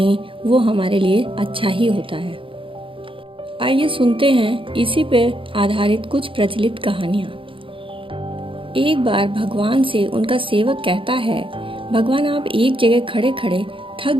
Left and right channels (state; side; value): late; left; 0.25 ms